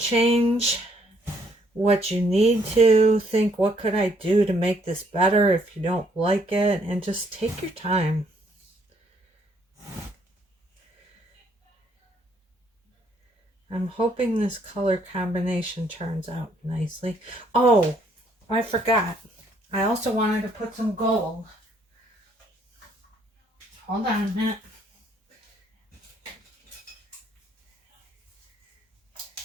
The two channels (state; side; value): normal; both; correlation 0.68